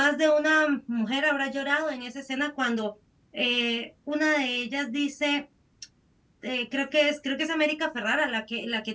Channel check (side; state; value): both; identical; correlation 1.00